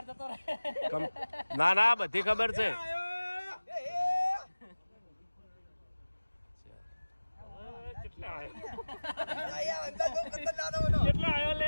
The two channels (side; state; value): both; inverted; correlation -1.00